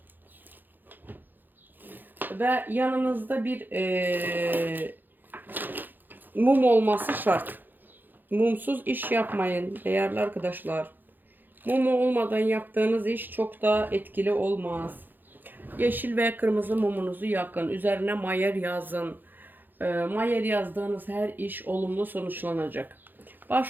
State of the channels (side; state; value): left; late; 0.089 ms